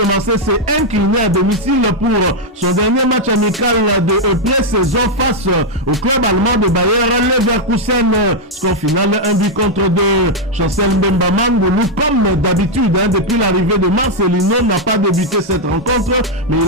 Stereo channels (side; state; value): both; normal; correlation 0.00